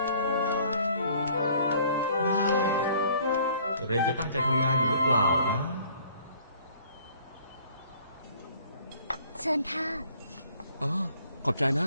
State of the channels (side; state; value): both; inverted; correlation -0.57